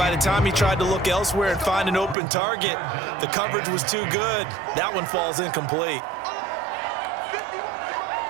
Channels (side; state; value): left; drops out; at 2.1 s